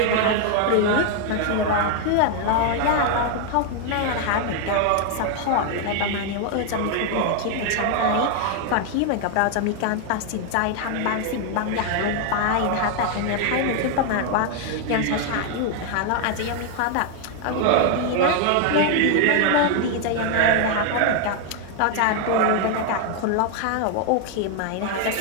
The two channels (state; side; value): different; both; correlation 0.00